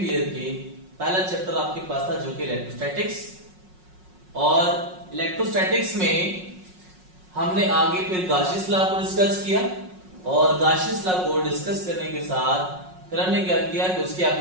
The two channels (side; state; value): left; late; 5.5 ms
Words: ईयर के पहला चैप्टर आपके पास था जो कि इलेक्ट्रोस्टैटिक्स, और इलेक्ट्रोस्टैटिक्स में हमने आगे फिर गाशियस लॉ को डिस्कस किया, और गाशियस लॉ को डिस्कस करने के साथ फिर हमने क्या किया कि उसकी